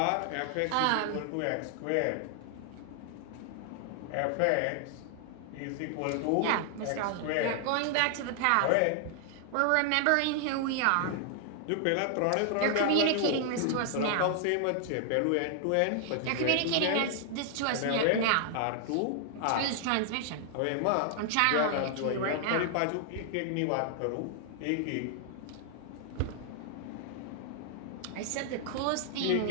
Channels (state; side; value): different; both; correlation 0.00